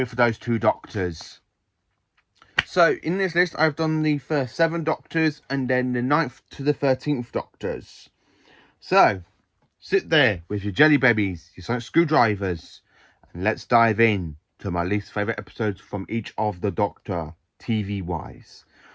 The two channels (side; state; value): both; identical; correlation 1.00